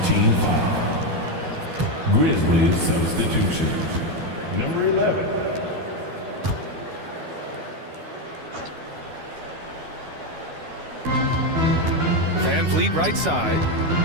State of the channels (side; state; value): left; late; 12 ms